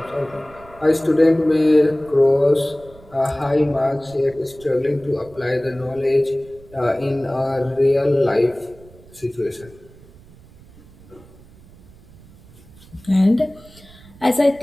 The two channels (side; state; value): right; noise; rumble, 23 dB below the sound